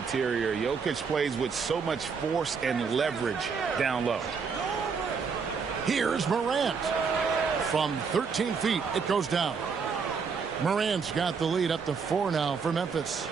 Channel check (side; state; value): left; quieter; 5.6 dB